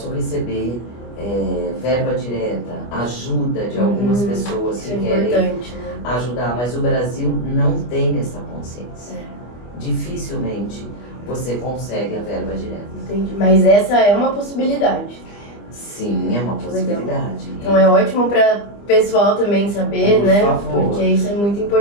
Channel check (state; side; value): late; right; 25 ms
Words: receber verba direta, ajuda de algumas pessoas que querem ajudar, mas o Brasil não tem essa consciência. Dificilmente você consegue a verba direta. Entendi, mas essa é uma possibilidade. Sim, é uma possibilidade. Então é ótimo para pessoal também saber, Por né? favor. Porque isso é muito